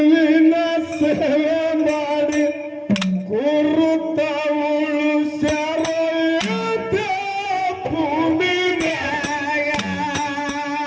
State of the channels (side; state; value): both; identical; correlation 1.00